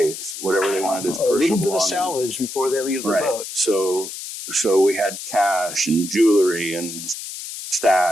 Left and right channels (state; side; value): noise; left; hiss, 9 dB below the sound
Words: whatever they wanted as A little personal bit of belongings. salvage before they leave the Right. boat. So we had cash and jewelry and